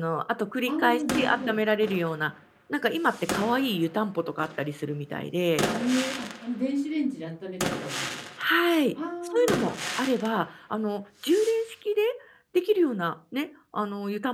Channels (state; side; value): identical; both; correlation 1.00